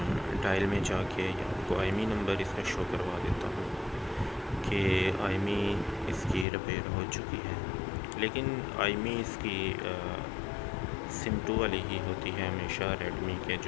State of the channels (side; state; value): right; drops out; at 6.5 s